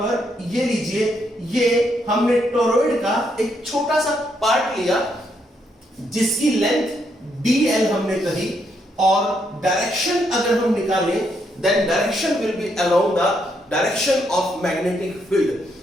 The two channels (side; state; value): both; normal; correlation 0.76